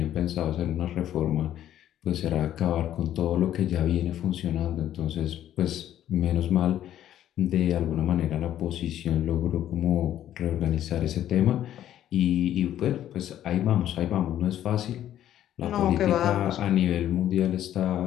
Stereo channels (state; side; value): quieter; right; 11.7 dB